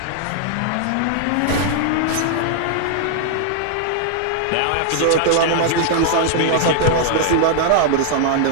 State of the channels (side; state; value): both; different; correlation 0.00